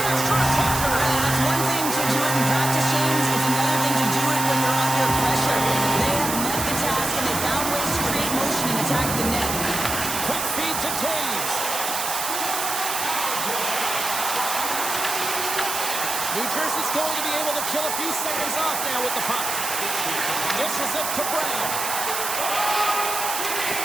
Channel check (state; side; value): noise; right; hiss, 3 dB below the sound